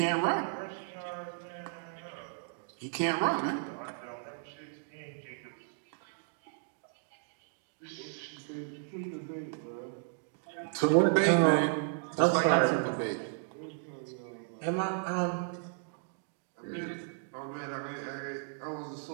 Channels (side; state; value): left; silent; digital silence